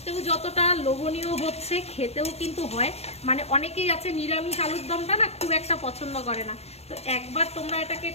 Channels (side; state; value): right; late; 0.30 ms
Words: যতটা লোভনীয় হচ্ছে, খেতেও কিন্তু হয়। মানে অনেকেই আছে নিরামিষ আলুর দমটা না খুব একটা পছন্দ করে না। তো একবার তোমরা এটাকে